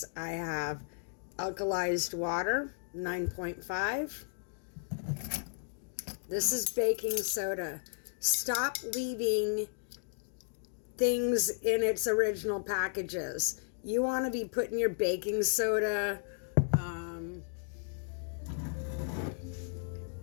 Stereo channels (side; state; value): right; silent; digital silence